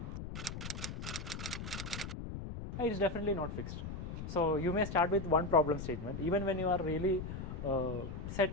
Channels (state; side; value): noise; left; rumble, 7 dB below the sound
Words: It's definitely not fixed. So you may start with one problem statement. Even when you are really